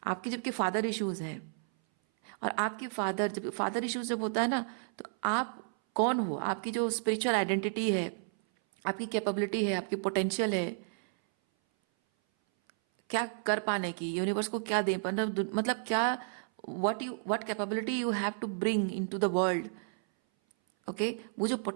आपके जबकि फादर इश्यूज हैं, और आपके जब फादर इश्यूज जब होता है ना, तो आप कौन हो, आपकी जो स्पिरिचुअल आइडेंटिटी है, आपकी कैपेबिलिटी है, आपकी पोटेंशियल है क्या कर पाने की, यूनिवर्स को क्या दे, मतलब क्या, what capability you have to bring into the world. Okay, वो जो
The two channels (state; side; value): silent; left; 56 dB below the other